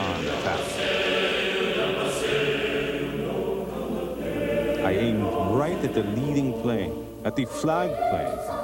attack. I aimed right at the leading plane, at the flag plane,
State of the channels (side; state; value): both; identical; correlation 1.00